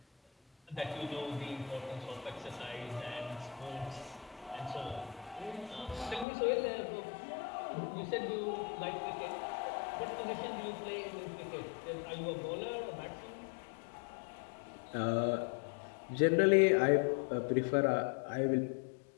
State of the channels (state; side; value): drops out; right; at 6.2 s